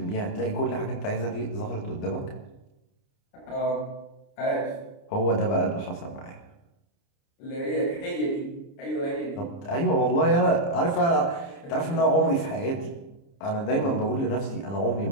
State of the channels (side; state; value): right; late; 29 ms